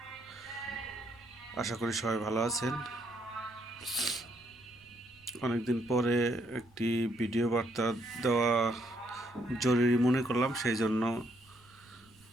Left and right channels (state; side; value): noise; right; rumble, 29 dB below the sound